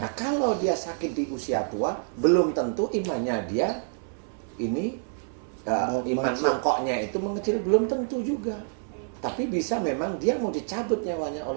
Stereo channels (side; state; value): left; silent; 60 dB below the other